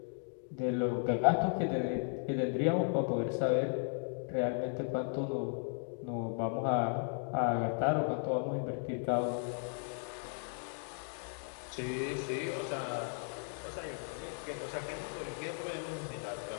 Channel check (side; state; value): right; silent; 54 dB below the other